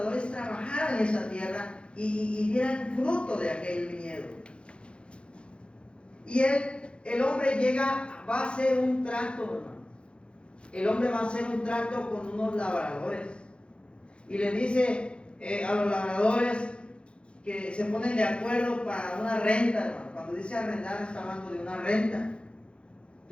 trabajaran en esa tierra y dieran fruto de aquel viñedo. Y el hombre va a hacer un trato, hermano. El hombre va a hacer un trato con unos labradores y le dice a los labradores que se ponen de acuerdo para una renta, hermano. Cuando dice arrendar, está hablando de una renta.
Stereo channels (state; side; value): late; right; 0.057 ms